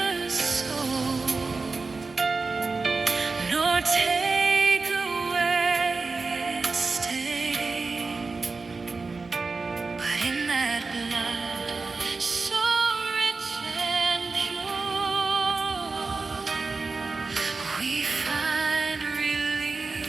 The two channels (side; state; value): left; quieter; 4.1 dB